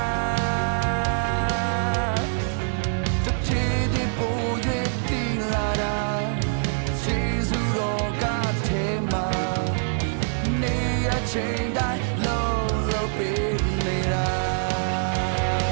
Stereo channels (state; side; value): silent; left; digital silence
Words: တစ်ချီဒီပို့ရတီလာတာကျေးဇူးတော်ကထဲမှာနေရချိန်တိုင်းလုံးပေးနေတာ